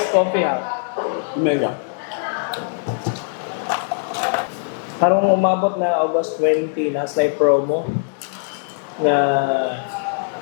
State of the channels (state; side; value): silent; right; digital silence